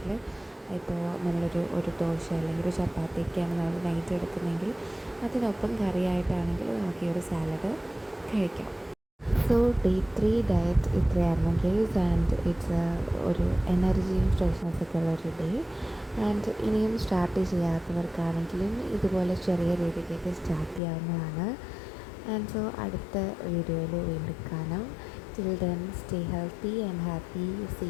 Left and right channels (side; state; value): right; drops out; at 20.8 s